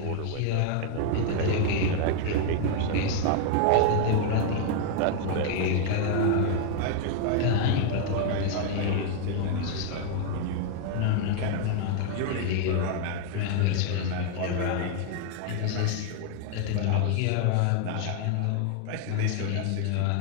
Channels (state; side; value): different; both; correlation 0.00